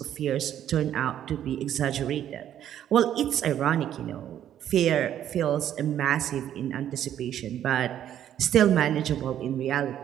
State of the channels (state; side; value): quieter; left; 10.7 dB